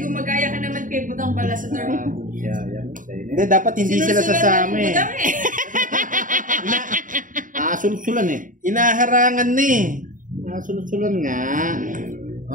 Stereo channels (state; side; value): late; left; 0.38 ms